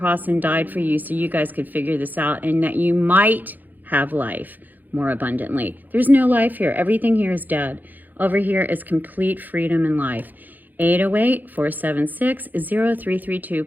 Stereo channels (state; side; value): late; left; 0.085 ms